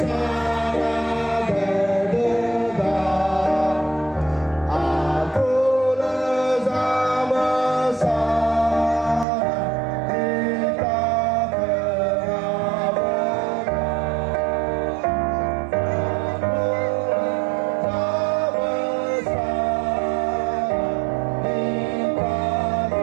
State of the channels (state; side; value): drops out; left; at 9.2 s